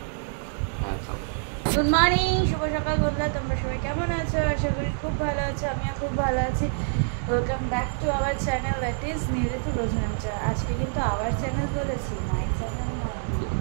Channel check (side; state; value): left; silent; digital silence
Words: গুড মর্নিং, শুভ সকাল বন্ধুরা, তোমরা সবাই কেমন আছো? আশা করি খুব ভালো আছো, আমিও খুব ভালো আছি। Welcome back to our channel, that is নিউরিতু রোজনামচা। আজকে কিন্তু আওয়ার চ্যানেল বলেছি, মাই চ্যানেল নয়।